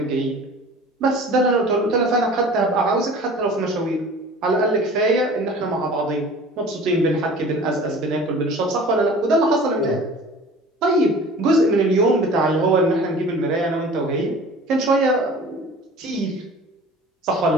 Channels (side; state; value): both; normal; correlation 0.43